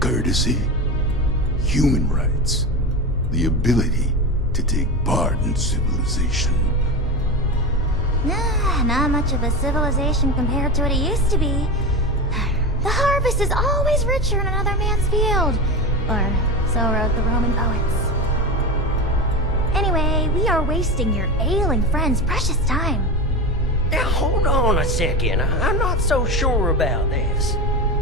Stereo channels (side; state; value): both; normal; correlation 0.22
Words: human rights, the ability to take part in civilization. Nah, not much of a civilization compared to what it used to be. The harvest is always richer in another man's field. Or so wrote the Roman poets. Anyway, we are wasting your ailing friend's precious time. Now, hold on a second. I'm not so sure about this.